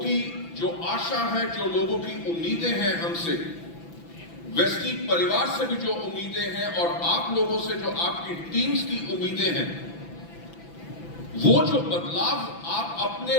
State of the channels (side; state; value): right; late; 6.0 ms